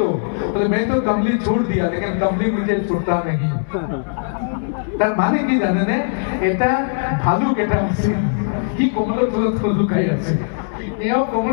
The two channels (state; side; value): silent; right; 66 dB below the other